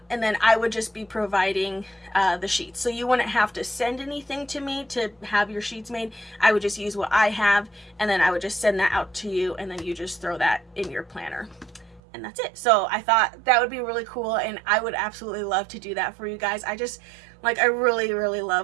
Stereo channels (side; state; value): left; drops out; at 12.0 s